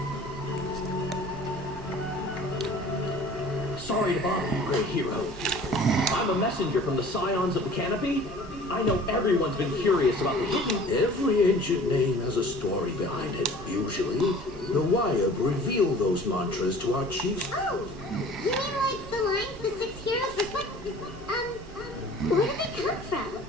Sorry to bother you, great hero. I'm a messenger from the Scions of the Canopy. I know everyone's been curious about the hidden... Every ancient name has a story behind it. Usually, the Wyab reveal those mantras to our chiefs. Oh, you mean like the lines the six heroes reflect? Where do they come from?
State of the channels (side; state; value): both; normal; correlation 0.46